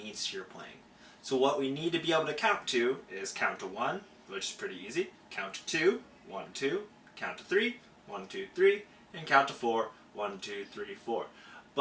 to your playing. So what we need to be able to count to is count to 1, which is pretty easy, count to 2, 1, 2, count to 3, 1, 2, 3, and count to 4, 1, 2, 3, 4.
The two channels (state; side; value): identical; both; correlation 1.00